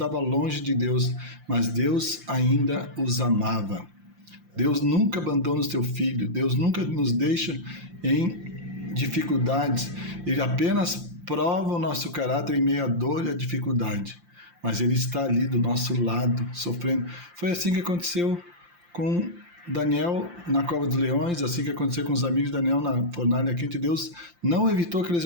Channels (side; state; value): left; late; 5.7 ms